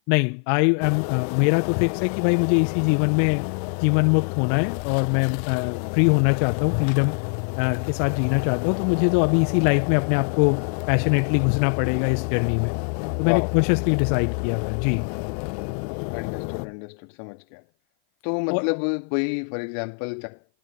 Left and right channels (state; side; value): silent; right; 56 dB below the other